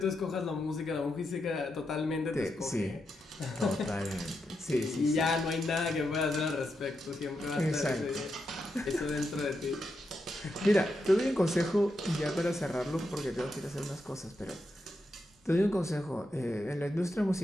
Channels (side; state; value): both; normal; correlation 0.85